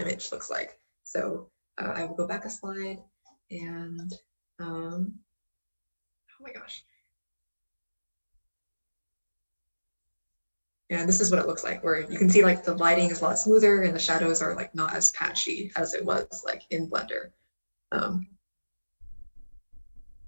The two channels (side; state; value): both; inverted; correlation -1.00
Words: looks like. So I will go back a slide and oh my gosh. And this is what it looks like, where you can see like the lighting is a lot smoother and the shadows are like not as patchy as it was like in Blender.